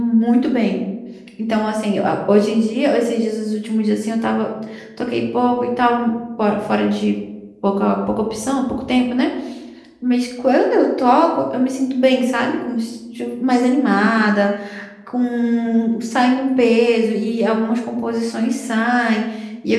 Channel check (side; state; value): both; identical; correlation 1.00